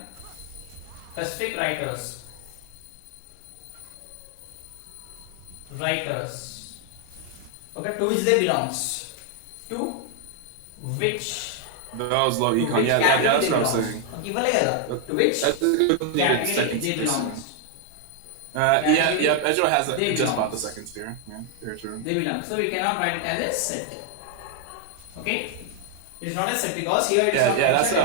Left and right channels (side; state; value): both; different; correlation 0.00